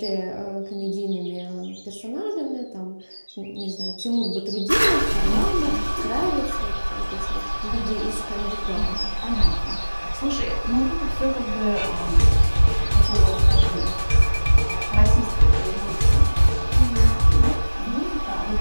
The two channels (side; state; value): both; inverted; correlation -1.00